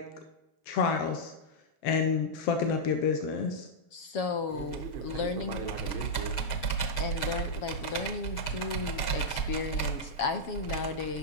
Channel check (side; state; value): right; late; 6.3 ms